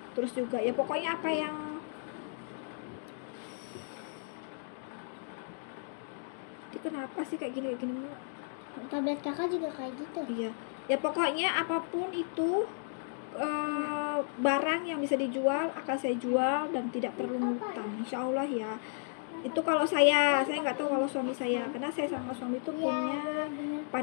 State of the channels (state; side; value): silent; right; digital silence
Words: Terus juga ya pokoknya apa yang itu kenapa sih kayak gini Tablet kakak juga kayak gitu. Iya, ya pokoknya apapun itu barang yang bisa dijual akan saya jual dan tidak perlu ngutang, insya Allah ya. Itu kalau saya nggak tahu kalau suami saya, karena saya sama suami itu punya